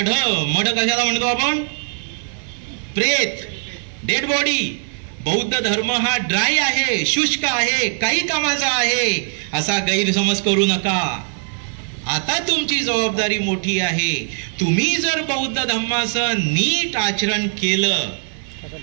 मढ कशाला म्हणतो आपण? प्रेत, डेड बॉडी. बौद्ध धर्म हा ड्राय आहे, शुष्क आहे, काही कामाचा आहे असा गैरसमज करू नका. आता तुमची जबाबदारी मोठी आहे. तुम्ही जर बौद्ध धर्माचं नीट आचरण केलं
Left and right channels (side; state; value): left; silent; digital silence